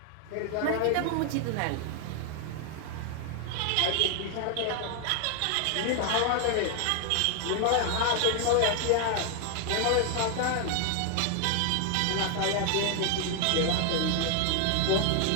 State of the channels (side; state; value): both; different; correlation 0.00